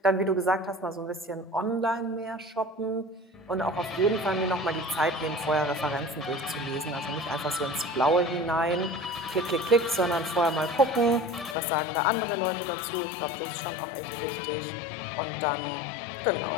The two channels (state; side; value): drops out; right; at 11.6 s